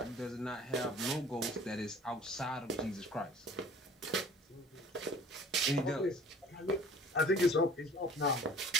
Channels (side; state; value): both; normal; correlation 0.48